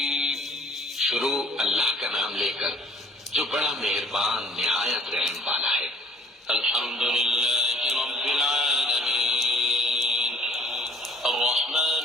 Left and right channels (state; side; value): normal; both; correlation 0.54